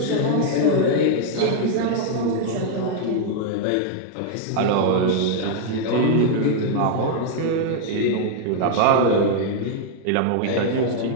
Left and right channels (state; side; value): different; both; correlation -0.01